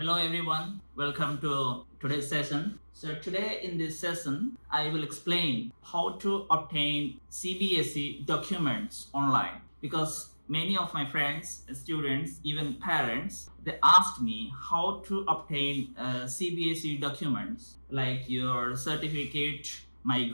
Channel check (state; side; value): inverted; both; correlation -1.00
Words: everyone, welcome to today's session. So today in this session, I will explain how to obtain CBSE documents online, because many of my friends, students, even parents, they asked me how to obtain CBSE documents like your certificate,